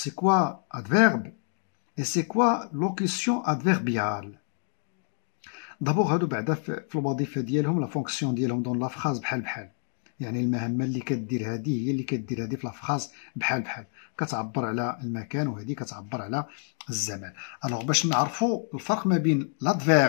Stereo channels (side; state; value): right; silent; 59 dB below the other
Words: كوا ادفيرب اي سي كوا لوكيسيون ادفيربيال. دابور هادو بعدا في الوظيفه ديالهم لا فونكسيون ديالهم دون لا فراز بحال يعني المهمه اللي كدير هذه هي اللي كدير هذه في لا فراز بحال كتعبر على المكان وهذه كتعبر على الزمان. الوغ باش نعرفوا الفرق ما بين